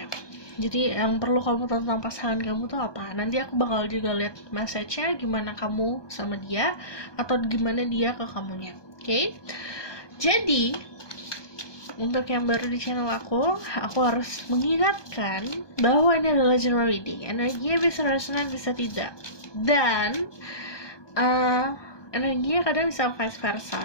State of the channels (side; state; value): right; late; 1.2 ms